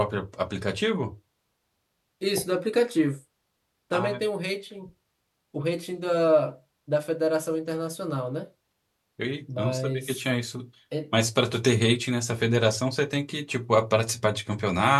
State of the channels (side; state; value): both; identical; correlation 1.00